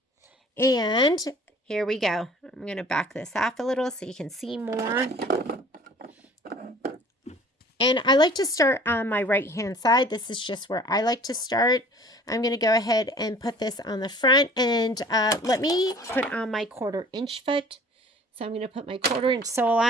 And here we go. I'm going to back this off a little so you can see more. And I like to start on my right-hand side. This is just where I like to start. I'm going to go ahead and put this on the front. And let me put on my 1/4 inch foot. So I'm going to put my 1/4 inch sole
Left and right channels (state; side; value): normal; both; correlation 0.49